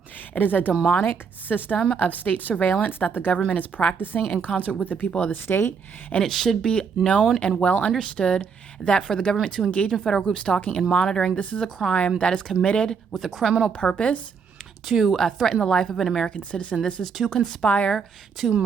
It is a demonic system of state surveillance that the government is practicing in concert with the people of the state. And it should be known and well understood that for the government to engage in federal group stalking and monitoring, this is a crime that is committed with a criminal purpose to threaten the life of an American citizen. This is to conspire to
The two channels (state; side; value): quieter; left; 6.0 dB